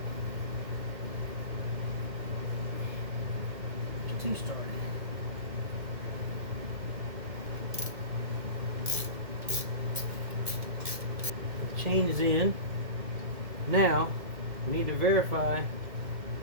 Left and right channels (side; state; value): left; late; 1.7 ms